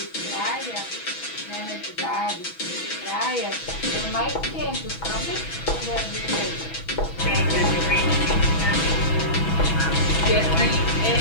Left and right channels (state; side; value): late; right; 6.1 ms